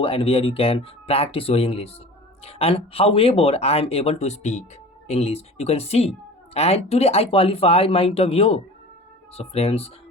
and where you can practice your English. And however, I am able to speak English. You can see. And today I qualified my interview. So friends,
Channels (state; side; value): normal; both; correlation 0.39